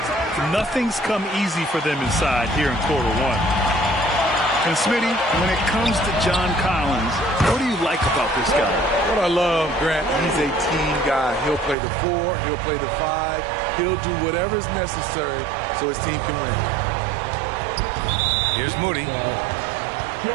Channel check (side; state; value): left; drops out; at 11.8 s